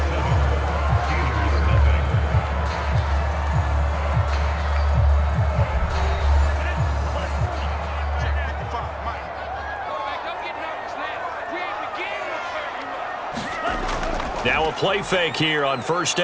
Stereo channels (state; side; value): identical; both; correlation 1.00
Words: Now a play fake here on first